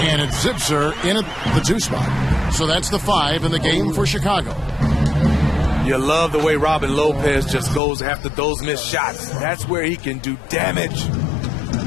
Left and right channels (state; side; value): drops out; right; at 7.8 s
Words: And it's Zipser in at the 2 spot. So that's the 5 in the game for Chicago. You love the way Robin Lopez just goes after those missed shots. That's where he can do damage.